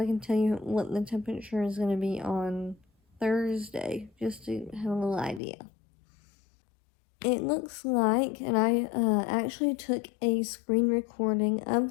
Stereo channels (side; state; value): right; drops out; at 5.4 s